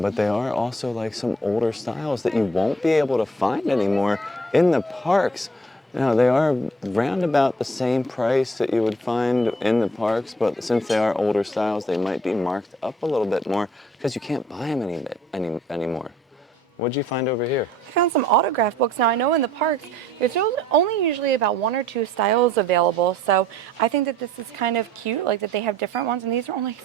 they are also like some older styles that you won't be able to find anymore in the parks. Now, they are round about the same price that you would find in the parks, but since they are older styles, they might be marked up a little bit more because you can't buy them anymore. What'd you find over here? I found some autograph books. Now, I know in the parks, there's only usually about 1 or 2 styles available, so I think that this is kind of cute, like that they have different ones, and these are only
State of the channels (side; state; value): both; normal; correlation 0.58